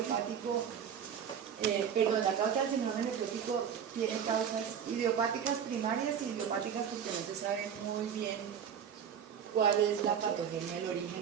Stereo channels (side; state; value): left; quieter; 8.1 dB